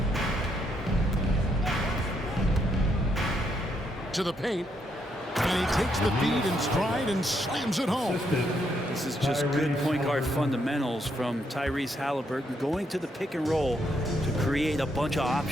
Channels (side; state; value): both; normal; correlation 0.76